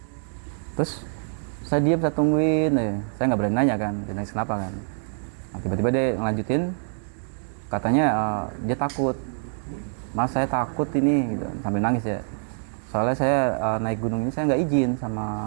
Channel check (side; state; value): left; silent; digital silence